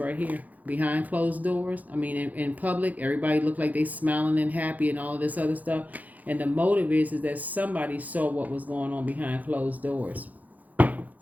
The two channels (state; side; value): late; left; 0.079 ms